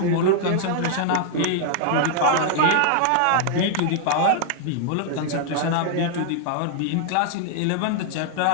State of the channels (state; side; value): different; both; correlation -0.01